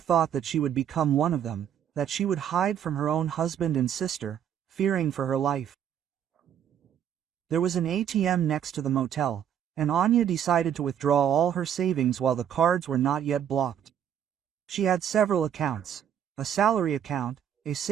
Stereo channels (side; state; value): left; quieter; 9.3 dB